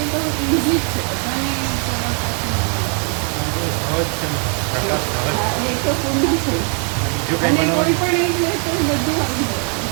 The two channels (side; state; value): left; quieter; 39.5 dB